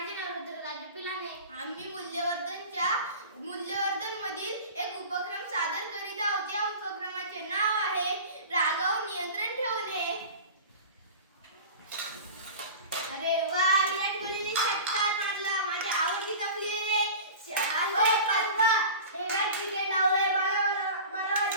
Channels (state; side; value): inverted; both; correlation -0.36